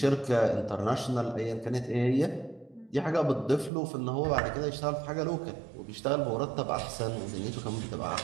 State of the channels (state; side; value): drops out; left; at 3.7 s